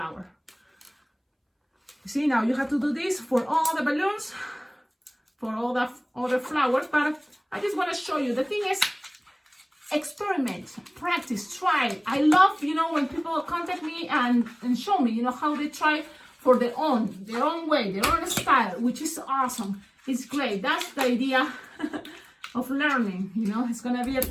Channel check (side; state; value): both; identical; correlation 1.00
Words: You see, now you have to do this for all the balloons, for all the other flowers, but I just wanna show you. The thing is, experiment, practice, try. I love, when people contact me and show me, how they try for their own way, their own style, which is awesome. It's great. That's the idea of learning. It's gonna be a